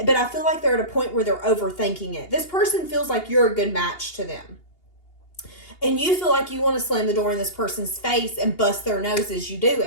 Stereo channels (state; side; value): late; right; 2.8 ms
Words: I feel like they're at a point where they're overthinking it. This person feels like you're a good match to them. And you feel like you want to slam the door in this person's face and bust their nose as you do